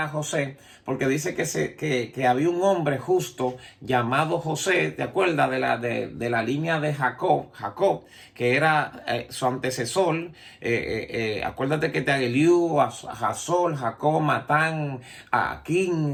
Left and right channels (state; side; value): identical; both; correlation 1.00